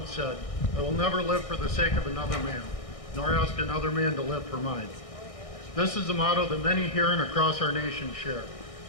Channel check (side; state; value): right; late; 1.6 ms